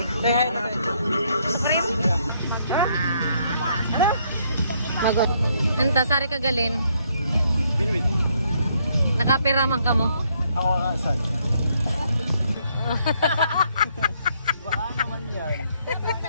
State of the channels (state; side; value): inverted; both; correlation -0.71